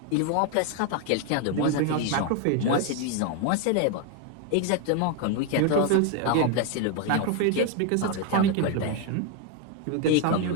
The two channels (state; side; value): different; both; correlation 0.01